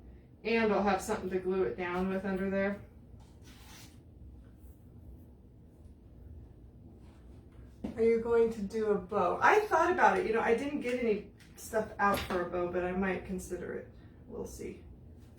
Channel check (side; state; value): both; identical; correlation 1.00